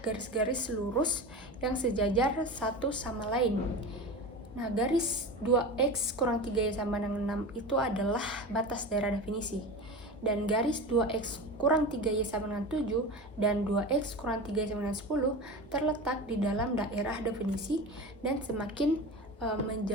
garis-garis lurus yang sejajar satu sama lain. Nah, garis 2x kurang 3y sama dengan 6 itu adalah batas daerah definisi. Dan garis 2x kurang 3y sama dengan 7 dan 2x kurang 3y sama dengan 10 terletak di dalam daerah definisi dan semakin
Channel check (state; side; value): normal; both; correlation 0.28